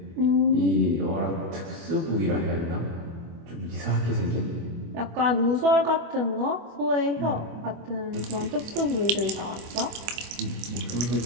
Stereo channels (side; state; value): left; late; 24 ms